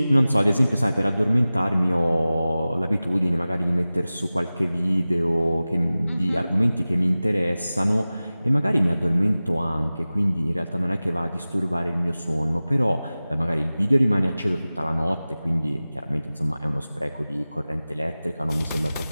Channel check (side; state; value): both; inverted; correlation -0.97